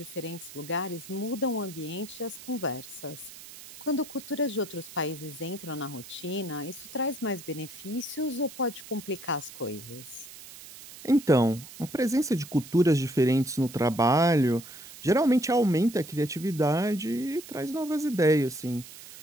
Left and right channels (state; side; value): noise; right; hiss, 16 dB below the sound